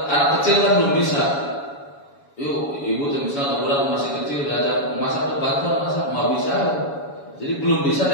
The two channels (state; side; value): late; right; 7.1 ms